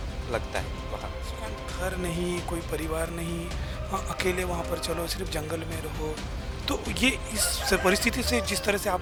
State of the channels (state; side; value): identical; both; correlation 1.00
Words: लगता है। वहाँ घर नहीं, कोई परिवार नहीं, हाँ अकेले वहाँ पर चलो, सिर्फ जंगल में रहो। तो ये इस परिस्थिति से जिस तरह से